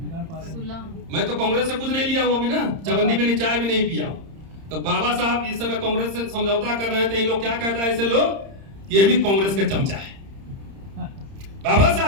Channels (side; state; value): left; late; 30 ms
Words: मैं तो कांग्रेस से कुछ नहीं लिया हूं अभी ना, चवन्नी भी नहीं, चाय भी नहीं पिया हूं। तो बाबा साहब इस समय कांग्रेस से समझौता कर रहे हैं, तो इन लोग क्या कहता है ऐसे लोग, ये भी कांग्रेस के चमचा है। बाबा